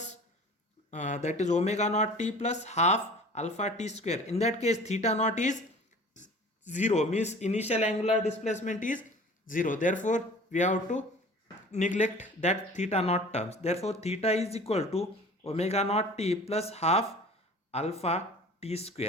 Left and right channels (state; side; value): normal; both; correlation 0.44